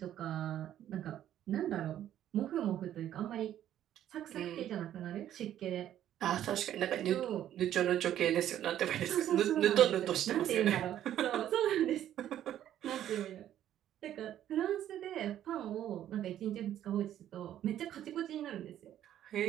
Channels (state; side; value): quieter; left; 11.5 dB